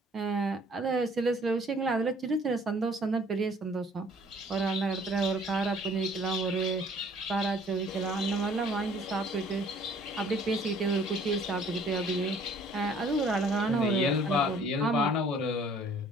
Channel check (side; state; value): both; normal; correlation 0.56